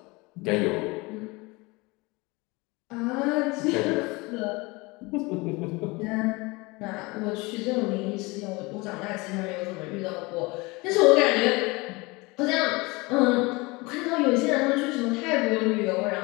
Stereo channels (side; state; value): right; quieter; 24.6 dB